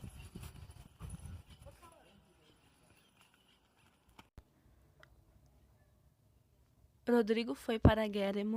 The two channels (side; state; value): both; identical; correlation 1.00